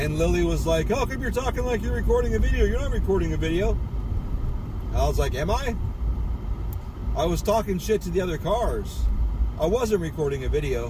Lily was like, how come you're talking like you're recording a video? You're not recording a video. And I was like, am I? I was talking shit to the other cars. I wasn't recording a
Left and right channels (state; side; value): identical; both; correlation 1.00